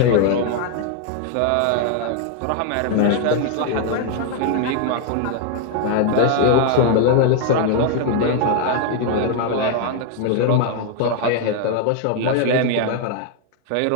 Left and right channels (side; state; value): both; different; correlation 0.00